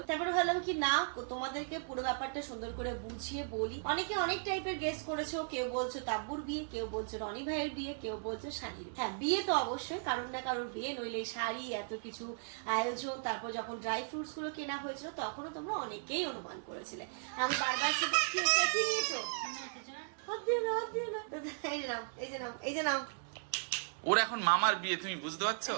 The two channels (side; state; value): left; silent; digital silence